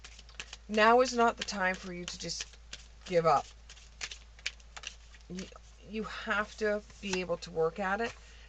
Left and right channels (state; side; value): identical; both; correlation 1.00